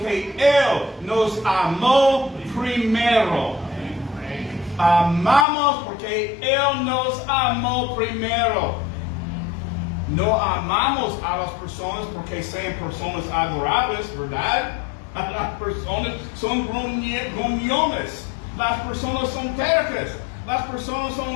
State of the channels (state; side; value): drops out; right; at 5.5 s